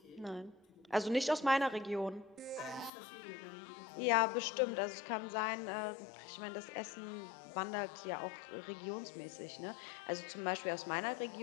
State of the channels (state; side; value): drops out; right; at 2.9 s